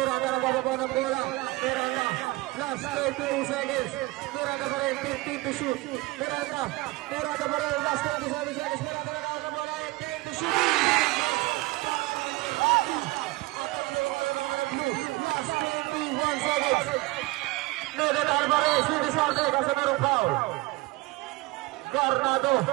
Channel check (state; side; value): quieter; left; 21.2 dB